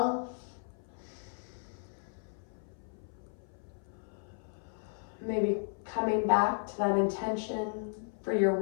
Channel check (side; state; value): right; silent; 55 dB below the other